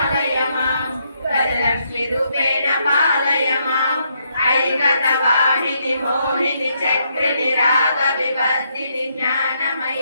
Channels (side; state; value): both; inverted; correlation -0.76